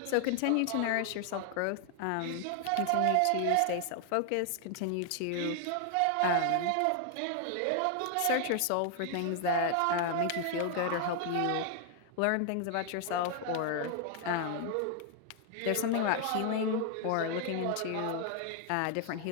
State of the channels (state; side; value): different; both; correlation 0.00